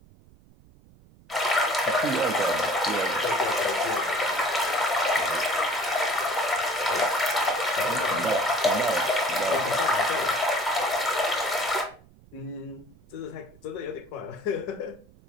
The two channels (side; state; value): right; noise; rumble, 26 dB below the sound